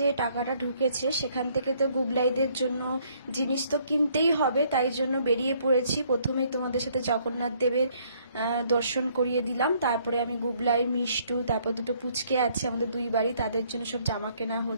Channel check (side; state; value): both; inverted; correlation -0.65